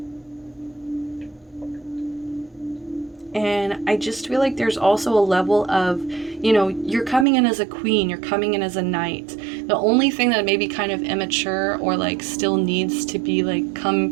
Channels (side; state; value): left; drops out; at 7.2 s